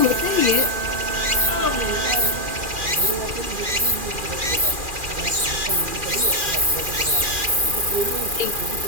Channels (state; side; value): late; left; 2.4 ms